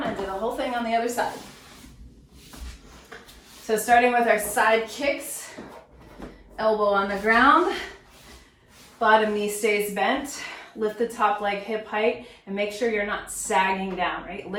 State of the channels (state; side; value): identical; both; correlation 1.00